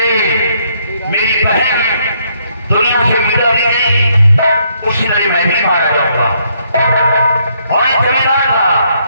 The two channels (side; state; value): both; inverted; correlation -0.71